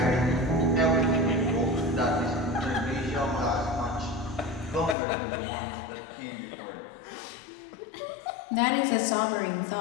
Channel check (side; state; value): right; drops out; at 5.0 s